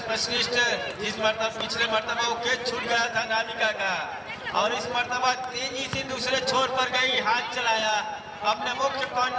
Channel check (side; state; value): both; identical; correlation 1.00